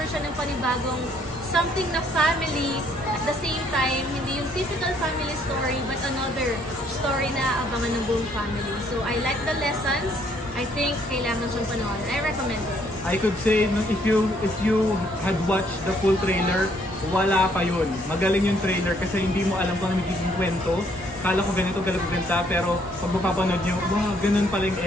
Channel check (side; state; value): both; normal; correlation 0.66